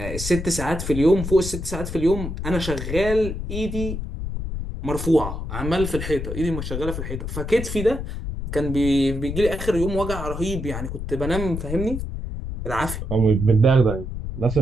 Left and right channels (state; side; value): noise; left; rumble, 6 dB below the sound